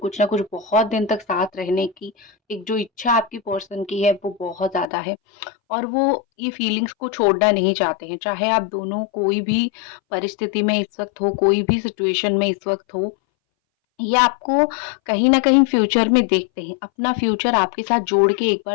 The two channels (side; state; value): right; drops out; at 4.9 s